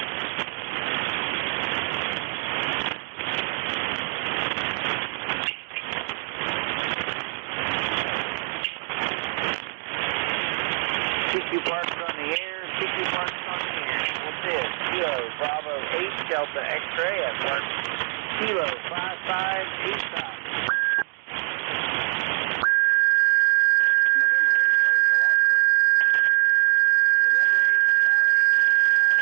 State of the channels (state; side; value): silent; left; digital silence